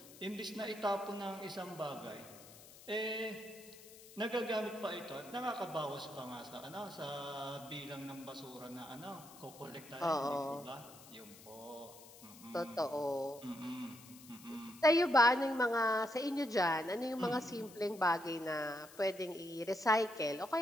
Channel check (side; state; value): left; noise; hiss, 19 dB below the sound